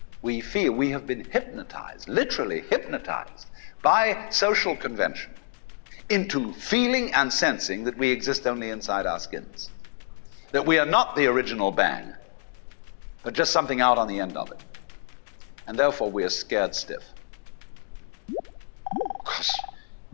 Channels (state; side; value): silent; right; digital silence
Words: We feel we have been hypnotized, literally hypnotized, by social convention into feeling and sensing that we exist only inside our skins, that we are not the original bang, but just something out on the end of it. And therefore we are scared stiff. Because